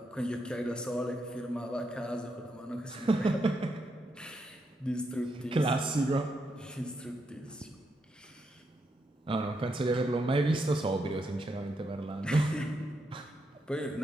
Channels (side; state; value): both; normal; correlation 0.81